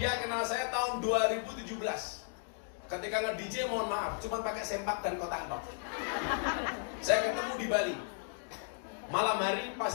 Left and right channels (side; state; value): right; silent; digital silence